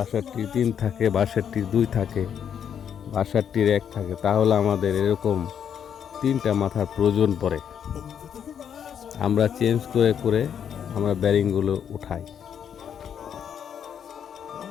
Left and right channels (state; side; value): quieter; right; 8.4 dB